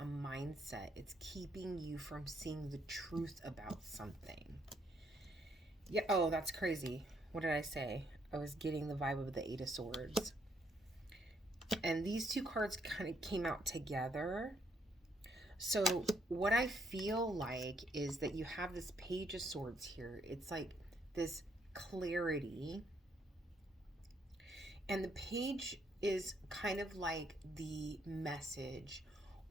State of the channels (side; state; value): both; normal; correlation 0.71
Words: mindset. It's keeping you from seeing the truth about something. Yeah, oh, that's crazy. What did I say? I was getting the vibe of the Eight of Swords. And these two cards kind of came out together. So what I feel like is that you have this Page of Swords here. It's like this clarity. And the page is kind of like the message